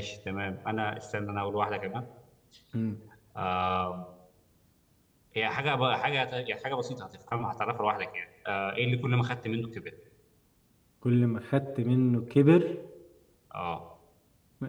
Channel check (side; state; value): both; identical; correlation 1.00